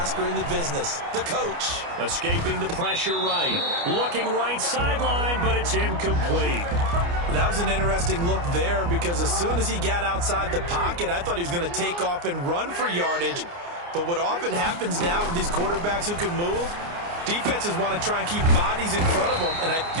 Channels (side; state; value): left; late; 29 ms